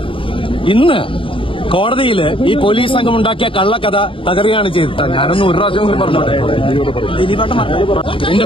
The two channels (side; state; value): right; late; 0.25 ms